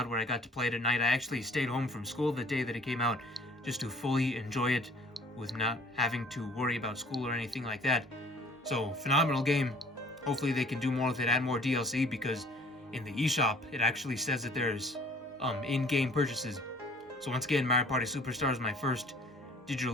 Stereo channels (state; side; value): normal; both; correlation 0.54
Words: where I got to play it at night. I actually stayed home from school the day that it came out just to fully enjoy it with not having to worry about school or anything like that. So, phenomenal game. Hopefully they can do more with it, add more DLC, because in the eShop, it actually says that there's in-game purchases. So once again, Mario Party Superstars, my first digital